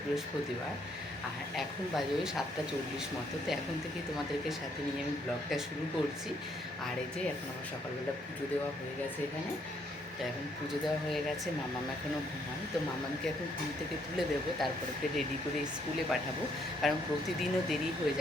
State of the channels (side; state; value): both; normal; correlation 0.70